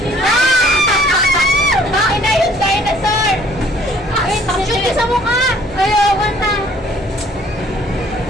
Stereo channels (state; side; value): normal; both; correlation 0.58